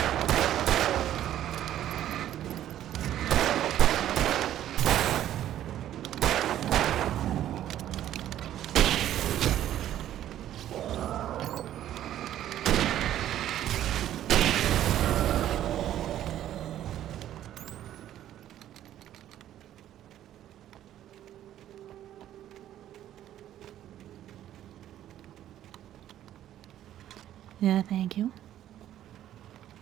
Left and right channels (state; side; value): quieter; left; 12.0 dB